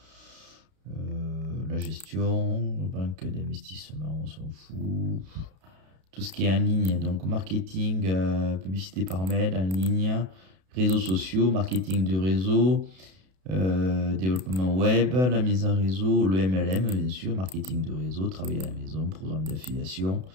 la gestion, banque d'investissement, on s'en fout. Tout ce qui est en ligne, donc marketing, publicité par mail, en ligne, réseaux sociaux, marketing de réseau, développement web, la mise en réseau, le MLM, bien sûr, marketing de réseau, travailler à la maison, programme d'affiliation,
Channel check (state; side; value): late; left; 32 ms